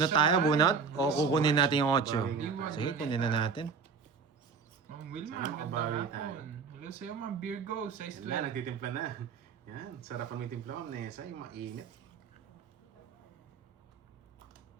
tayo, bunot? O kukunin natin yung 8? Iwan Sige, na kunin na natin. Ma'am Wilma, Sana ganda makabawi hapon. Hello sa'yo, Ma'am Virgo, size Yan na, 12. nagtitimpla na. Yan, sarapan mo yung timpla mo, Nessa, yung mainit.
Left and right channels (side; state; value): left; quieter; 5.6 dB